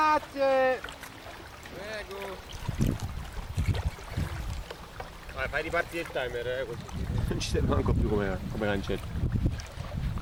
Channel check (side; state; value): both; identical; correlation 1.00